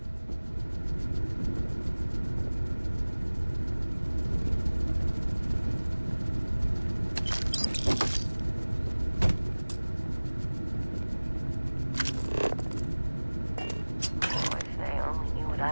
Oh, if they only knew what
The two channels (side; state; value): both; inverted; correlation -1.00